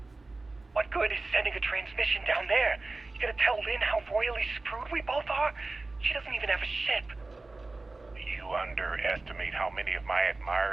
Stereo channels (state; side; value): quieter; left; 3.3 dB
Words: What good is sending a transmission down there? You gonna tell Lynn how royally screwed we both are? She doesn't even have a ship. You underestimate how many of my